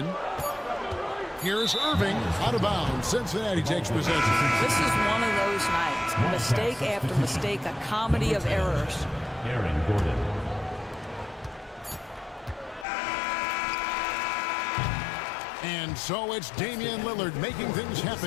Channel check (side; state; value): right; drops out; at 12.9 s